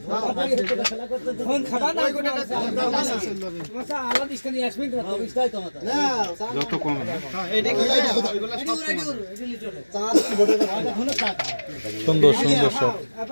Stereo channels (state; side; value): inverted; both; correlation -1.00